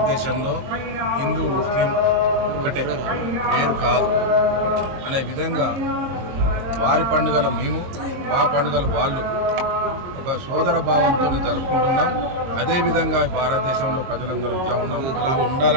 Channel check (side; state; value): left; late; 22 ms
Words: హిందూ ముస్లిం ఒకటే, వేరు కాదు అనే విధంగా వారి పండుగలు మేము, మా పండుగలు వాళ్ళు ఒక సోదర భావంతో జరుపుకుంటున్నాం. అదేవిధంగా భారతదేశంలో ప్రజలందరూ ఇట్లా ఉన్నాం, అలా